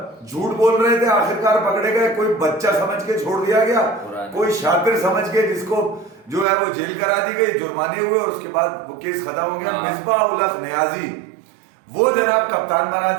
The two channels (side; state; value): left; drops out; at 6.5 s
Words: झूठ बोल रहे थे, आखिरकार पकड़े गए। कोई बच्चा समझ के छोड़ दिया गया, कोई शातिर समझ के जिसको जो है वो जेल करा दी गई, जुर्माने हुए और उसके बाद वो केस खत्म हो गया। मिसबाह उल हक नियाजी वो जनाब कप्तान बना